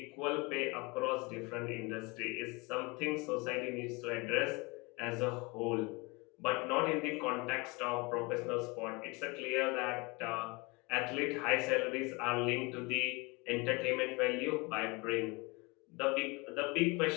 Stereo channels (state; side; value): quieter; right; 26.8 dB